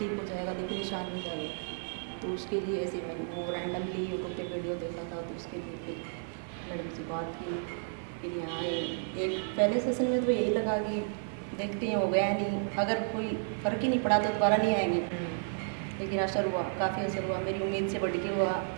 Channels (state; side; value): silent; left; 56 dB below the other